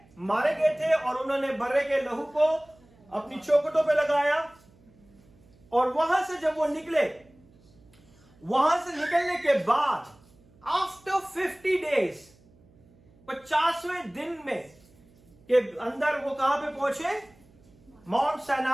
मारे गए थे और उन्होंने बर्रे के लहू को अपनी चौखटों पे लगाया। और वहां से जब वो निकले, वहां से निकलने के बाद आफ्टर 50 डेज, 50वें दिन में के अंदर वो कहां पे पहुंचे? माउंट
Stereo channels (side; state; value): right; noise; hum, 29 dB below the sound